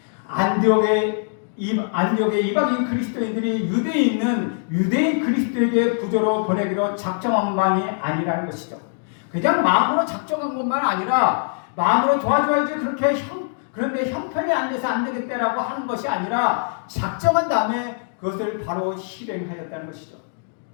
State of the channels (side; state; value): right; silent; digital silence